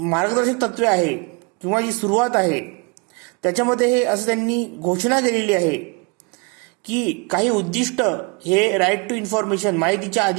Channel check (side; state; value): left; quieter; 30.5 dB